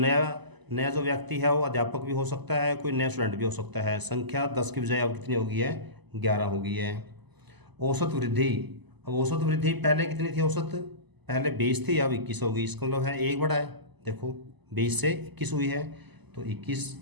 नया जो व्यक्ति है वो अध्यापक भी हो सकता है, कोई नया स्टूडेंट भी हो सकता है। संख्या 10 की बजाय अब कितनी हो गई है, 11 हो गई है। औसत वृद्धि, अब औसत वृद्धि पहले कितनी थी औसत, पहले 20 थी, अब 21 हो गई। इसका मतलब है एक बढ़ा है, देखो 20 से 21 हुई है, तो 21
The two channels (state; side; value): late; left; 1.0 ms